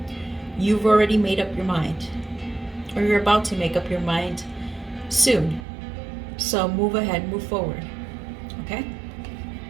You've already made up your mind, or you're about to make up your mind soon. So move ahead, move forward. Okay?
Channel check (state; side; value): drops out; left; at 5.7 s